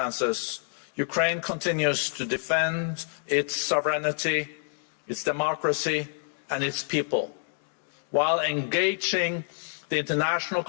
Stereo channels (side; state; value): right; silent; digital silence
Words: Ukraine continues to defend its sovereignty, its democracy, and its people, while engaging the international